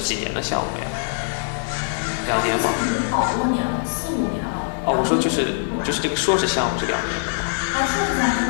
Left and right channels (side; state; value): right; silent; 64 dB below the other